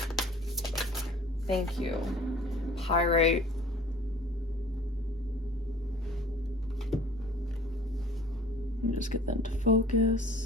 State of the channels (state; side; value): normal; both; correlation 0.49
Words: Thank you. Pyrite. Let me just get them to